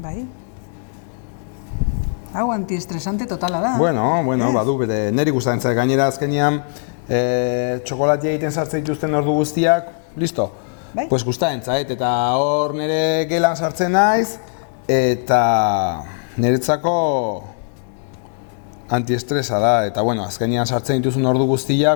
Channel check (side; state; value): right; silent; digital silence